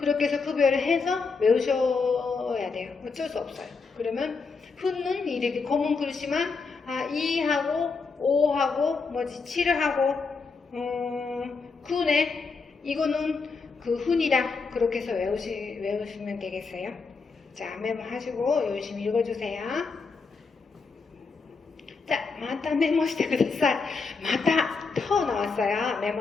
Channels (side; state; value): right; quieter; 4.6 dB